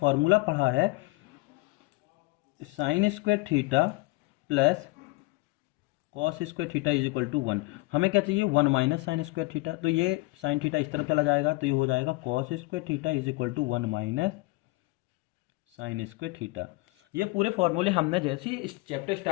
पढ़ा है sine square theta plus cos square theta is equal to 1। हमें क्या चाहिए, 1 माइनस साइन स्क्वायर थीटा, तो ये साइन थीटा इस तरफ चला जाएगा, तो ये हो जाएगा cos square theta is equal to 1 minus sine square theta. ये पूरे फॉर्मूले हमने जैसे ही इस चैप्टर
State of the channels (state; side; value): quieter; right; 23.3 dB